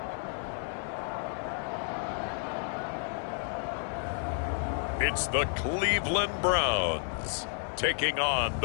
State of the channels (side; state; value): right; silent; 57 dB below the other